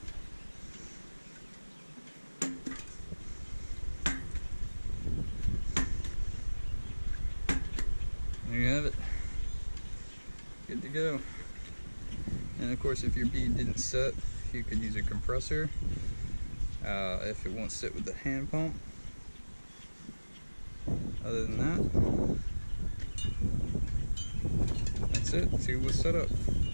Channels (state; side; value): inverted; both; correlation -1.00